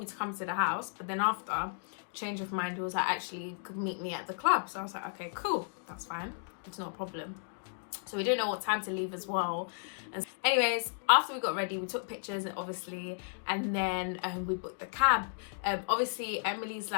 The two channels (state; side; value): silent; right; digital silence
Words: to come to the house, but then after change of mind he was like, actually you could meet me at the club. So I was like, okay, cool, that's fine, it's not a problem. So we didn't know what time to leave as well. And anyways, after we got ready, we took pictures obviously, and then we booked the cab. Obviously Emily's